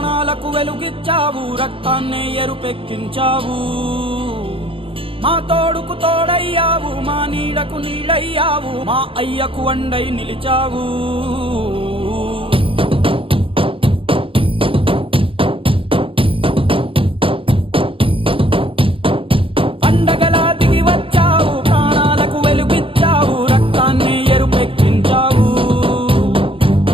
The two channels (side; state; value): left; late; 0.26 ms